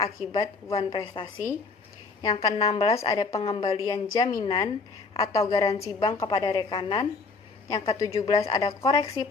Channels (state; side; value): quieter; right; 4.2 dB